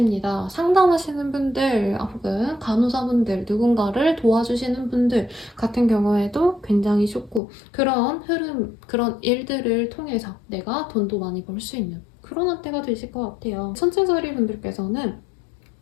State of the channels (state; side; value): drops out; right; at 7.4 s